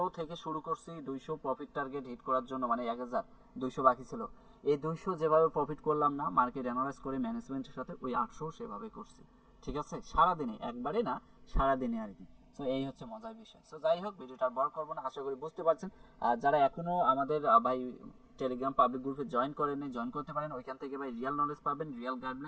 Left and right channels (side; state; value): both; identical; correlation 1.00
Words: থেকে শুরু করছি 200 প্রফিট টার্গেট হিট করার জন্য, মানে 1200 বাকি ছিল, এই 200 যেভাবে প্রফিট করলাম না মার্কেট অ্যানালাইজ করে ম্যানেজমেন্টের সাথে, ওই 800 সেভাবে করছি, ঠিক আছে? সারাদিনে, একবারে না, সারাদিনে আর কি। সো এই হচ্ছে মজার বিষয়। সো যাই হোক, ভিডিওটা আর বড় করবো না, আশা করি বুঝতে পারছেন। আর যারা এখনো আমাদের ভাই টেলিগ্রাম পাবলিক গ্রুপে জয়েন করেন, জয়েন করতে পারেন। ওইখান থেকে ভাই রিয়েল নলেজ পাবেন, রিয়েল